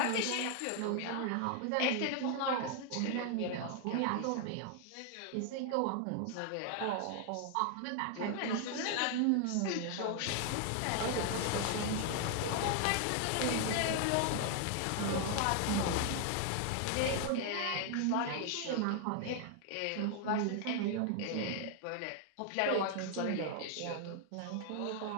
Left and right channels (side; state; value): both; different; correlation 0.00